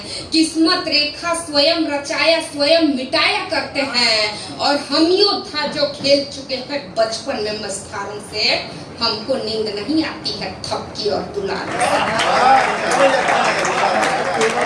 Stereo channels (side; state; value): both; identical; correlation 1.00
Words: किस्मत रेखा स्वयं रचाया स्वयं मिटाया करते हैं। और हम योद्धा जो खेल चुके हैं बचपन में मस्तारों से, हमको नींद नहीं आती है थपकी और दुलार।